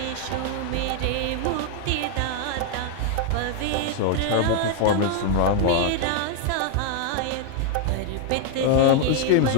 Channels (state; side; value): different; both; correlation 0.00